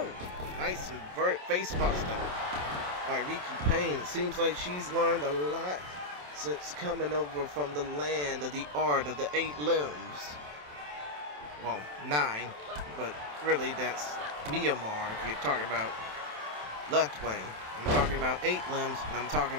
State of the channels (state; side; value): late; left; 27 ms